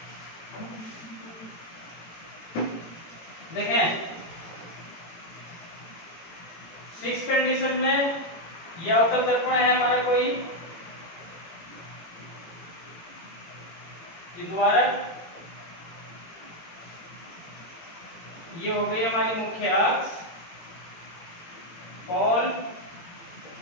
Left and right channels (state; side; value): late; right; 18 ms